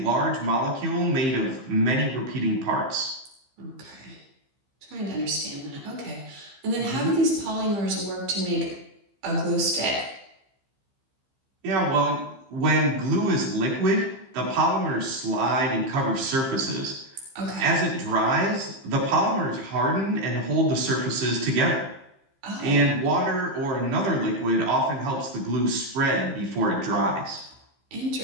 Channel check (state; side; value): late; left; 15 ms